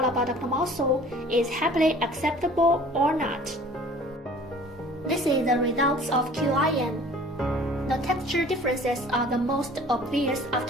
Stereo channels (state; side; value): normal; both; correlation 0.49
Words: adductor mussel is happily acceptable or not. This is the results of QIM. The texture differences are the most obvious